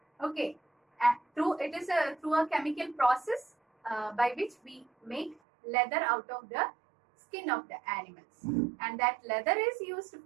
Okay. And through a chemical process by which we make leather out of the skin of the animals, and that leather is used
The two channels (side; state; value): left; drops out; at 5.4 s